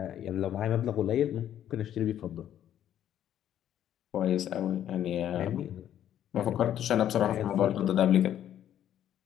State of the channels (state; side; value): quieter; right; 10.9 dB